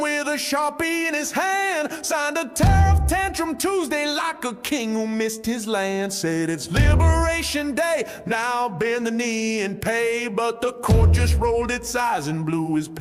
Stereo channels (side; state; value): both; identical; correlation 1.00